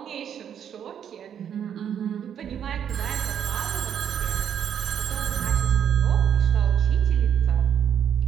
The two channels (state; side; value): quieter; left; 8.8 dB